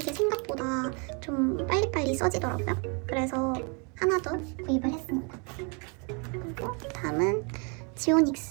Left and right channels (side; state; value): left; quieter; 34.9 dB